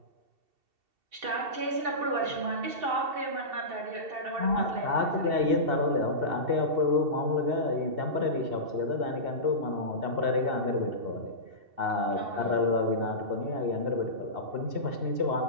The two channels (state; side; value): late; left; 2.7 ms